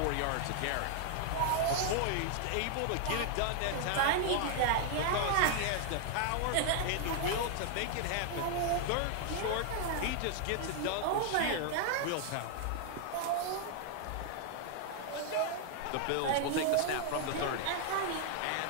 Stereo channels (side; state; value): both; different; correlation 0.00